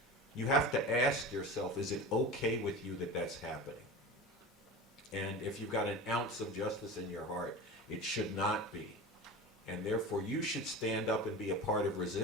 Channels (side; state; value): both; normal; correlation 0.31